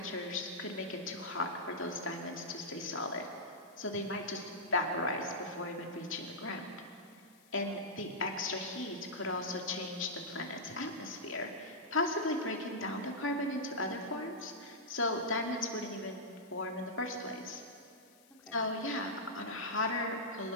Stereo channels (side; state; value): left; noise; hiss, 27 dB below the sound